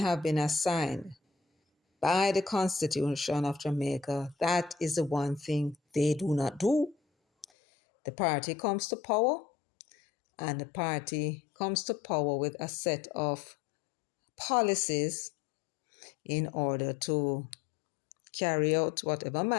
been assigned by the Constitution of Jamaica, that is the one thing they do not do. The party comes to power, and the party comes to power with a set of policies in order to carry out whatever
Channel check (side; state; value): right; drops out; at 7.5 s